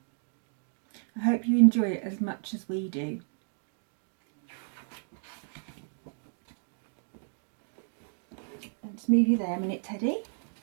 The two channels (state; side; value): silent; left; digital silence